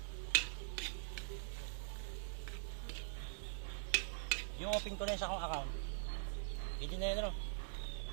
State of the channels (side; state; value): left; silent; digital silence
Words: Yung open ko na yun sa akong account. Hindi na yun, ano?